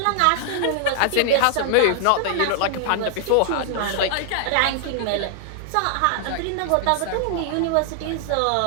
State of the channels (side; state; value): both; different; correlation 0.00